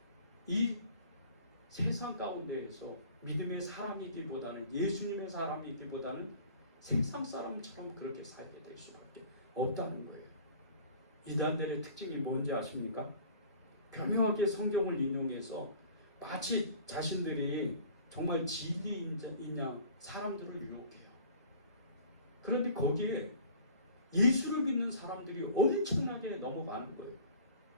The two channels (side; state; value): both; inverted; correlation -0.46